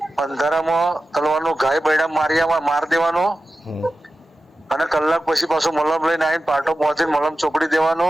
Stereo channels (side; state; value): both; normal; correlation 0.94